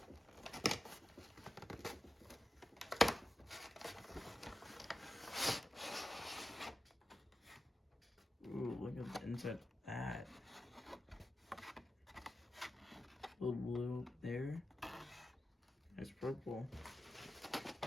Ooh, look at the inside of that. A little blue up there. There's purple.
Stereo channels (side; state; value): both; normal; correlation 0.92